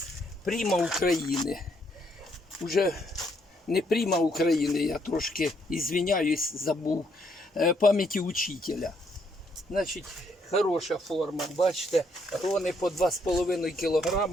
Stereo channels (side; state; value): both; normal; correlation 0.72